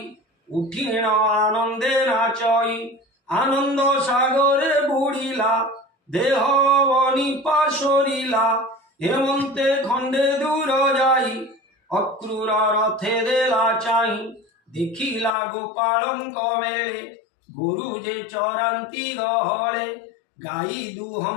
উঠিণ আনন্দে নাচই। আনন্দ সাগরে বুড়িলা, দেহ বনিপা সরিলা। হেমন্তে খণ্ডে দূর যাই, অক্রূর রথে দেলা চাই। দেখিলা গোপালঙ্ক মেলে, গরু যে চরান্তি গহলে। গাই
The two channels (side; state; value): right; drops out; at 15.4 s